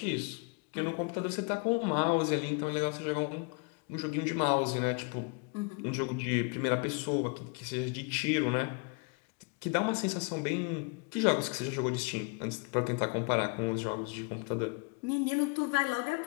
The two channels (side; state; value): right; quieter; 32.9 dB